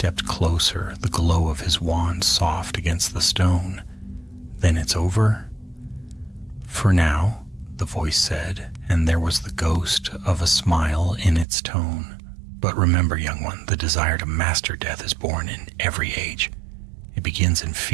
closer, the glow of his wand soft against the stone. "Then it's over?" "For now," the voice said, and there was the ghost of a smile in its tone. "But remember, young one, the desire to master death is born in every age. It begins in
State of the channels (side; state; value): left; drops out; at 11.5 s